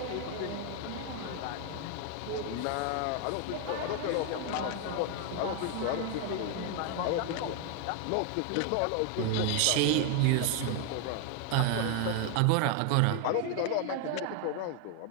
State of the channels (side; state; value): both; different; correlation 0.01